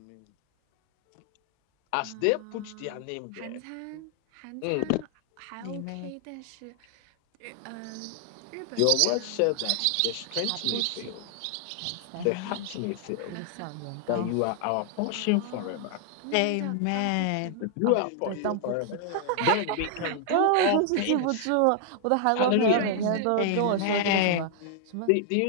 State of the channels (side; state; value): both; different; correlation 0.00